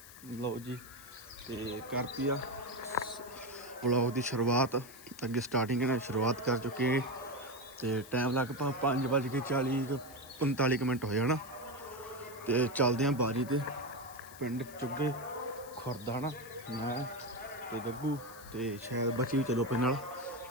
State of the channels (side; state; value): left; noise; hiss, 18 dB below the sound